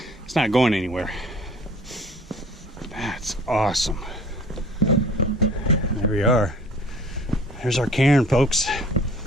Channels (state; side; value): normal; both; correlation 0.49